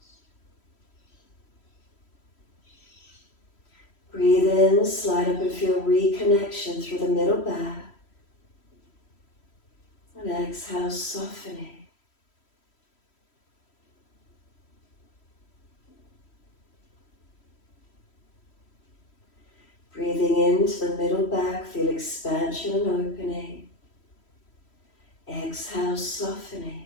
Breathe in, slide up and feel reconnection through the middle back. And exhale, softening. Breathing into the middle back, feel expansion and opening. Exhale, softening.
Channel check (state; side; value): late; right; 3.1 ms